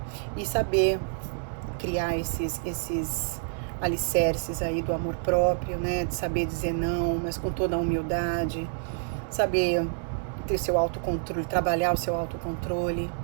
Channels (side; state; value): left; silent; digital silence